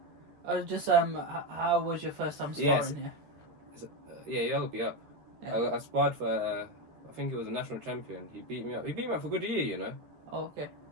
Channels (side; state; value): left; late; 13 ms